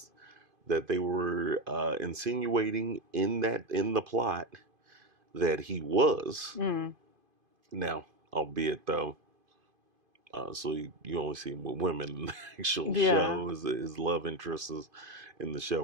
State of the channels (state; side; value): late; left; 2.5 ms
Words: that they were insinuating in the plot that he was. Mm. Now, albeit though, so you only see him with women in the actual Yeah. show. His love interests in the show